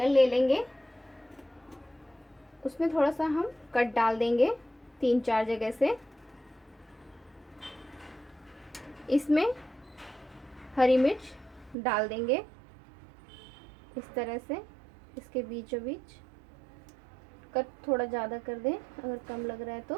ले लेंगे, उसमें थोड़ा सा हम कट डाल देंगे 3-4 जगह से। इसमें हरी मिर्च डाल देंगे इस तरह से, इसके बीचों बीच। कट थोड़ा ज़्यादा कर दें अगर कम लग रहा है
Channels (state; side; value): drops out; left; at 11.8 s